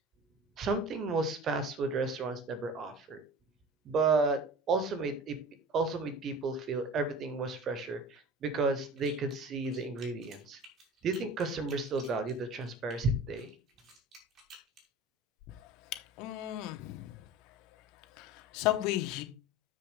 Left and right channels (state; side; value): normal; both; correlation 0.38